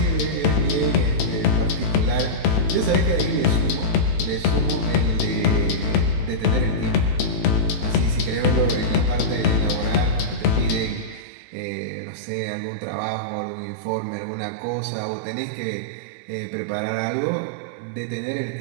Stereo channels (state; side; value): drops out; left; at 11.2 s